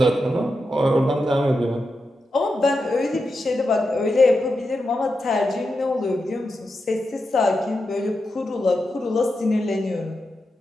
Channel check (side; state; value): both; normal; correlation 0.88